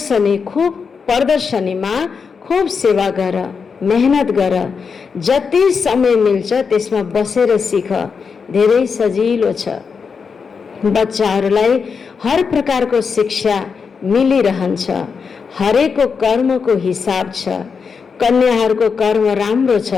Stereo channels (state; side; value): quieter; right; 5.7 dB